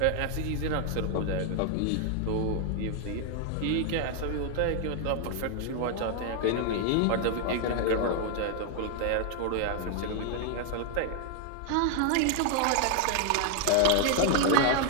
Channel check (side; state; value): both; different; correlation 0.00